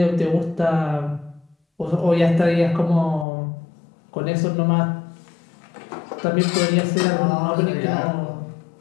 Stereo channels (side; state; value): right; drops out; at 3.2 s